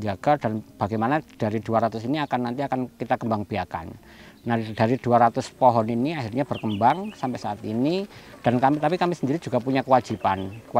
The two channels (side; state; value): both; identical; correlation 1.00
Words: dan bagaimana dari 200 ini nanti akan kita kembang biakan. Nah, dari 200 pohon ini akhirnya berkembang sampai saat ini, dan tapi kami sendiri juga punya